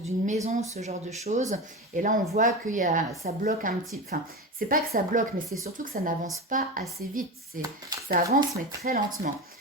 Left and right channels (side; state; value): both; normal; correlation 0.24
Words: maison, ce genre de choses. Et là, on voit que ça bloque un petit... Enfin, c'est pas que ça bloque, mais c'est surtout que ça n'avance pas assez vite. Ça avance, mais très lentement.